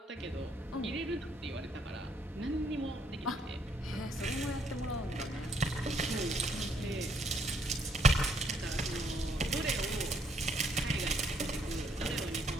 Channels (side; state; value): both; normal; correlation 0.70